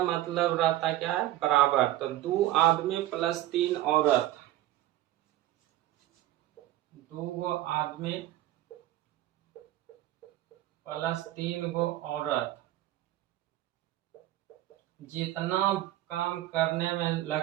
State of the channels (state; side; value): quieter; left; 14.7 dB